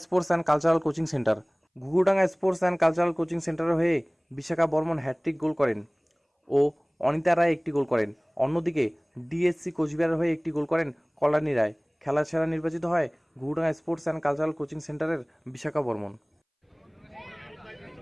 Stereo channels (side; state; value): both; identical; correlation 1.00